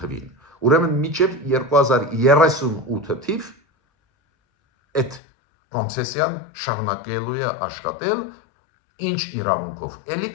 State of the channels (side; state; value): right; drops out; at 5.2 s